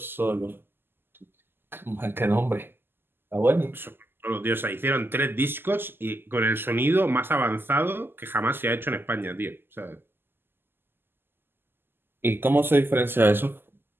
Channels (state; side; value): late; left; 0.10 ms